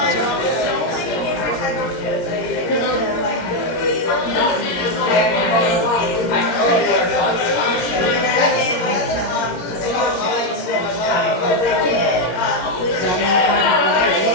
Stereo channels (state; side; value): late; right; 17 ms